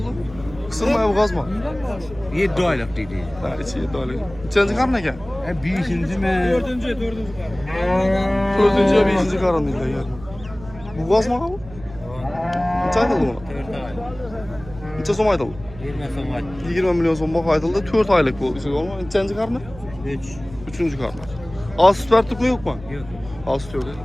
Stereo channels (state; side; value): noise; right; hum, 17 dB below the sound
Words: Kısılmaya bu gazma. 7 aylık dedi. Ha içi 7 aylık. İçenci karın ekan? Beşinci mi? Dördüncü. Dördüncü ya beşinci karın değil de yani. Bu gazma mı bu? Neçə aytıldı buna? 4 aylık. Neçə som aytıldı? 20 somat. 20 milyon som bax aytıldı. 4 aylık bu. Neçənci karını? 3. Üçüncü karını. Az süt verdik mi yok mu? Yok. Az süt yok.